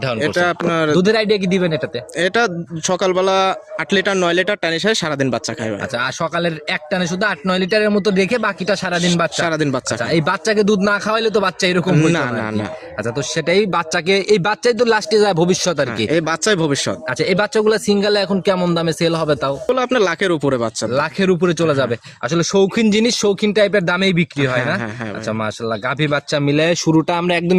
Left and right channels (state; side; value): identical; both; correlation 1.00